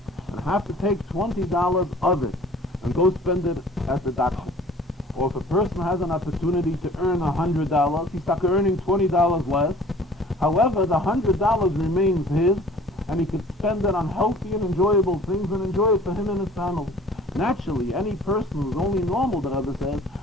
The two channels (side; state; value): both; normal; correlation 0.50